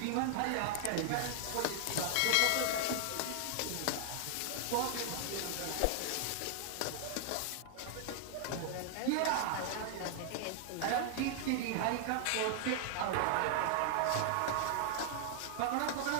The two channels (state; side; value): different; both; correlation 0.00